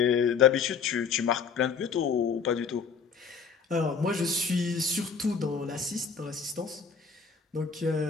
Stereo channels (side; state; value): right; quieter; 5.9 dB